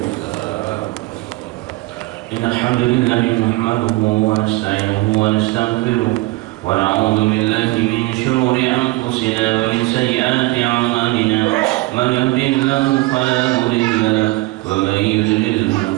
Innal hamdalillah nahmaduhu wa nasta'inuhu wa nastaghfiruh wa na'udzu billahi min shururi anfusina wa min sayyiati a'malina. Man yahdihillahu fala mudilla lahu wa man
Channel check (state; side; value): quieter; left; 20.5 dB